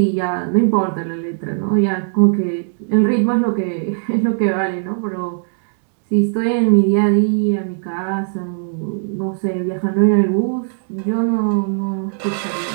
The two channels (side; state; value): left; silent; digital silence